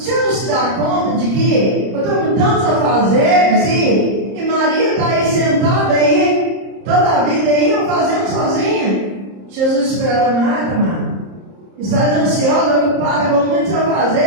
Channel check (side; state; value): left; late; 30 ms